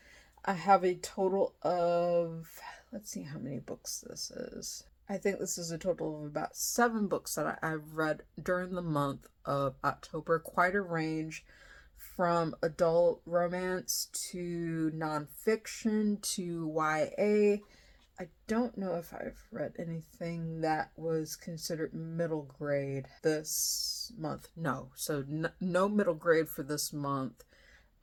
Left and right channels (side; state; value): both; identical; correlation 1.00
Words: I have a total of, let's see how many books this is. I think this is a total of about 7 books that I've read during the month of October. Quite a range from adult romance to nonfiction to YA. I don't know if I've read anything that was considered middle grade this month. No, so no middle grade for this month.